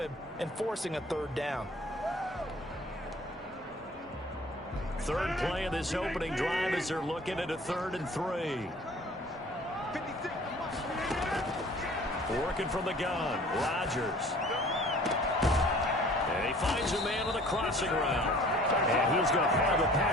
and forcing a 3rd down. Third play of this opening drive as they're looking at a 3rd and 3. Working from the gun, Rodgers. And he finds a man on the crossing route. And he's going to have the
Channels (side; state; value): both; normal; correlation 0.50